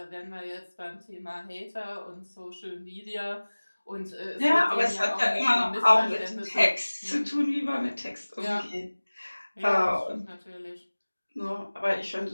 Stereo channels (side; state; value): both; inverted; correlation -1.00